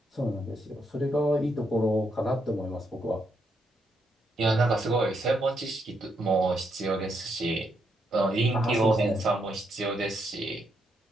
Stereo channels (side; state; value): both; normal; correlation 0.78